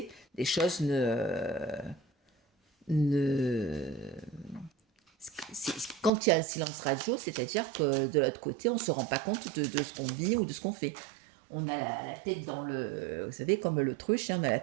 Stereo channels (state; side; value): drops out; left; at 6.1 s